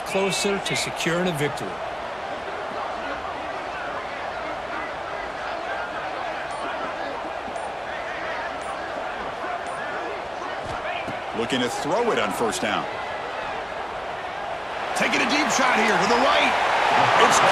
closer to securing a victory. Looking to throw it on first down. Taking a deep shot here to the right. It's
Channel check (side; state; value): both; identical; correlation 1.00